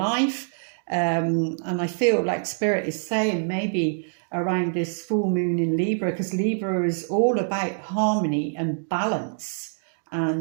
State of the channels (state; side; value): silent; left; digital silence